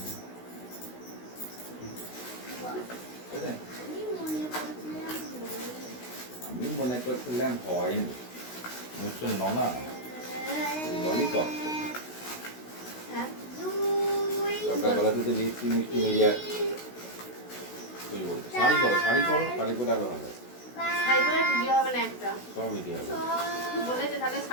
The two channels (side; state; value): right; late; 16 ms